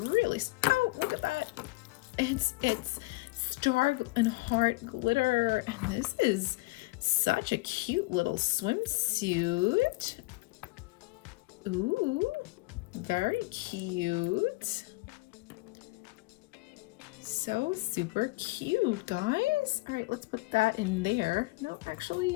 oh, look at that. It's star and heart glitter. And this is such a cute little swimsuit. Ooh, very cute. So super cute, guys. All right, let's put that in there. No, actually,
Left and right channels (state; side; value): quieter; right; 23.9 dB